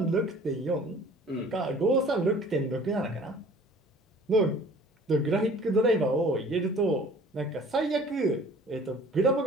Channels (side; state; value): both; normal; correlation 0.50